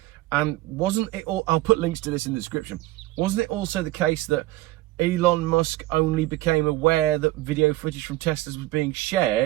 And wasn't it all, I'll put links to this in the description, wasn't it also the case that Elon Musk only became aware that video footage from Teslas was being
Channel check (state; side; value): quieter; left; 17.6 dB